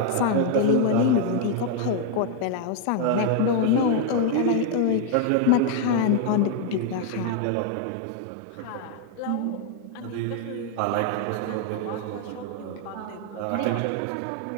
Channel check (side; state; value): both; different; correlation 0.00